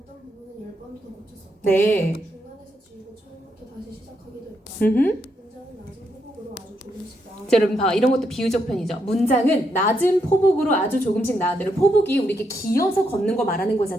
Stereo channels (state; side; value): normal; both; correlation 0.79